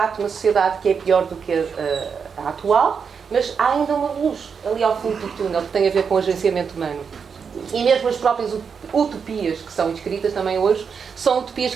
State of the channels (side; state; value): left; quieter; 6.2 dB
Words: de uma sociedade que é pior do que a atual, mas há ainda uma luz ali ao fundo do túnel que tem a ver com o agenciamento humano. E mesmo as próprias utopias que são escritas também hoje são utopias